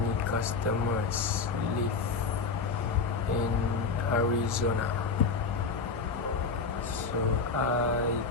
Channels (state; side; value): quieter; right; 4.7 dB